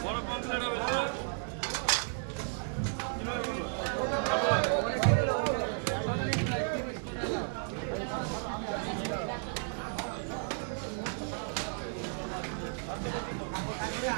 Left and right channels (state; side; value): silent; left; 55 dB below the other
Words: বড় কমপ্লিট হবে তো